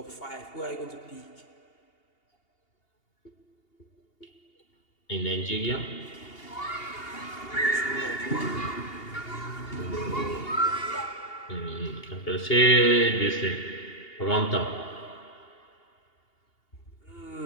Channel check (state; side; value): late; right; 2.8 ms